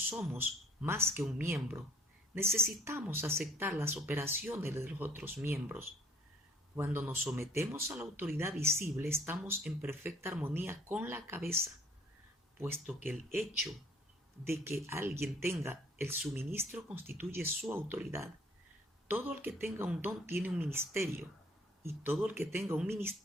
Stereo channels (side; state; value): both; normal; correlation 0.57